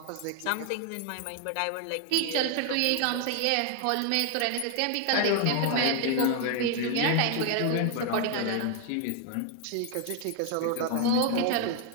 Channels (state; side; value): different; both; correlation 0.00